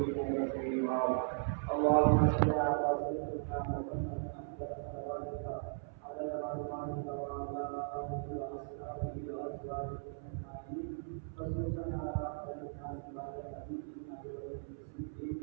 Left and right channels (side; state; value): left; silent; 53 dB below the other